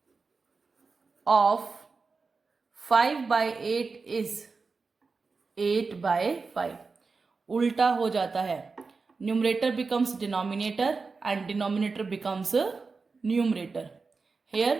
of 5/8 is 8/5. उल्टा हो जाता है. Numerator becomes denominator and denominator becomes numerator. Here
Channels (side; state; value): left; quieter; 4.4 dB